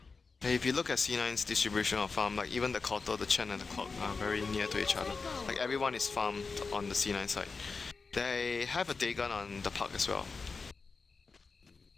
If you look at C9's distribution of farm, like even the Kotal, the Chen and the Clock are very near to each other. Like everyone is farmed on the C9 side. They have a Dagon on the park as well.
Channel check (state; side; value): quieter; right; 4.5 dB